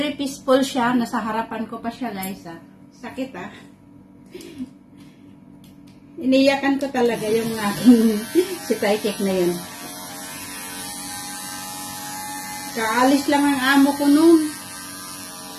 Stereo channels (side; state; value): both; identical; correlation 1.00